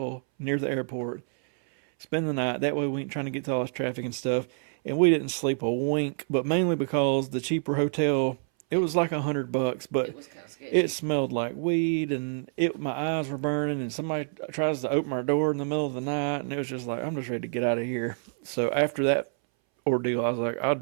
near the airport, spend the night. That way we ain't trying to get to all this traffic and stuff. And we didn't sleep a wink, but mainly because the cheaper hotel, it was like $100, but it was kind of sketchy. It smelled like weed, and my eyes were burning, and somebody tries to open our door in the middle of the night, and it was just like, I'm just ready to get out of here. So after that ordeal, I was like,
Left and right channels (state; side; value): silent; left; 60 dB below the other